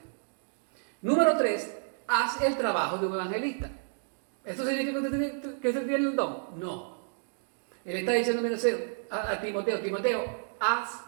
Número 3, haz el trabajo de un evangelista. ¿Esto significa que usted tiene el don? No. Él está diciendo a Timoteo, Timoteo, haz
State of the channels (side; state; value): left; silent; digital silence